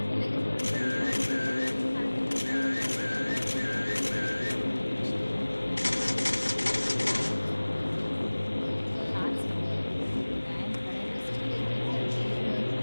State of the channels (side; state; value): both; inverted; correlation -1.00